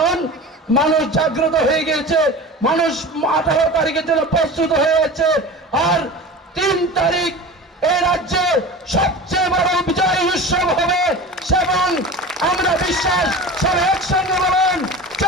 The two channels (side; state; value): both; normal; correlation 0.34